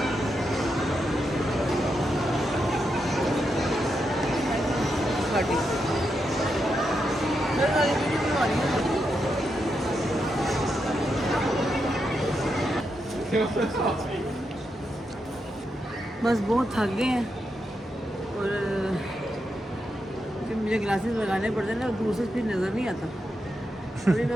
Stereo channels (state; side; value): normal; both; correlation 0.84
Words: पार्टी। बस बहुत थक गए हैं और फिर मुझे ग्लासेस लगाने पड़ते हैं ना, दूर से फिर नज़र नहीं आता। अभी